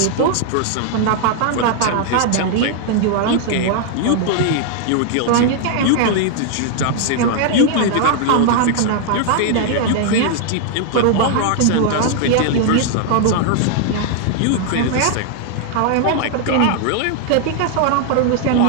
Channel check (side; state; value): both; different; correlation 0.00